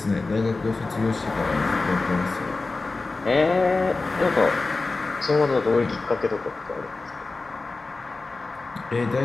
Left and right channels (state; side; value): quieter; right; 3.6 dB